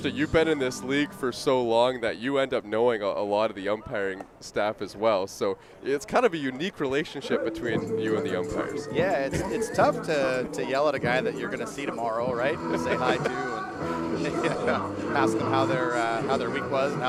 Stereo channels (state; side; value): identical; both; correlation 1.00